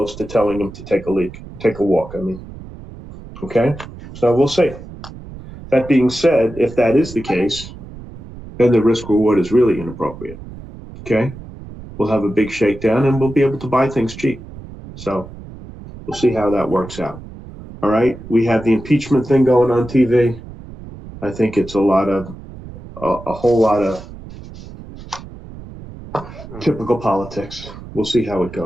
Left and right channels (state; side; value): noise; right; rumble, 15 dB below the sound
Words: to telling them to take a walk. Okay, so we'll see. That being said, if that is the case, then the risk reward is really inappropriate. Okay, we'll have a big shakedown and we'll be able to buy things cheap. So we'll see how that works out. All right, we have the impeachment thing going on TV. I think it's a whole lot of typical politics. We'll see how it